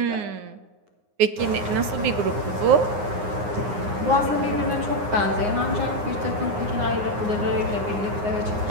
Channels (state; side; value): late; left; 9.7 ms